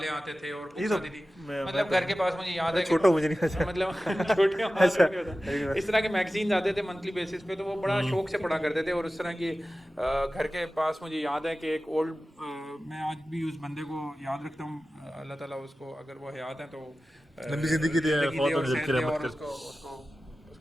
आते थे और ये बुक्स तो आती थी, मैं मतलब घर के पास मुझे याद है छोटा मुझे नहीं अच्छा। मतलब छोटे अच्छा। इस तरह के मैगजीन्स आते थे मंथली बेसिस पे, तो वो बड़ा शौक से पढ़ा करते थे। और उस तरह की घर के पास मुझे याद है कि एक ओल्ड, मैं आज भी उस बंदे को याद रखता हूँ, अल्लाह ताला उसको अगर वो हयात है तो लंबी जिंदगी दे, फौत होने सेहत की दे रहमत और कर। उसको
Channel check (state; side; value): normal; both; correlation 0.95